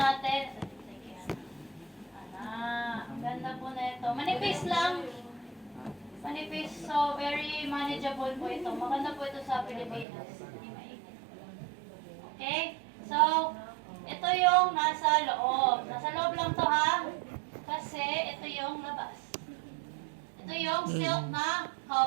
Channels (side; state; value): left; drops out; at 10.1 s